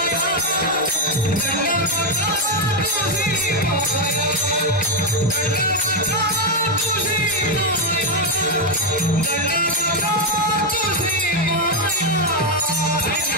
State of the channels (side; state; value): both; normal; correlation 0.03